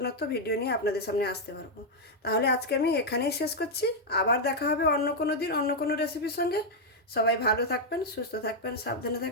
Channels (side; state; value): both; normal; correlation -0.01